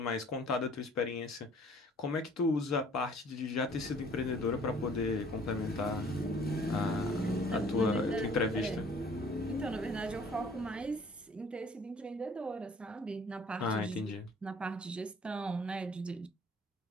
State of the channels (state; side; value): normal; both; correlation 0.54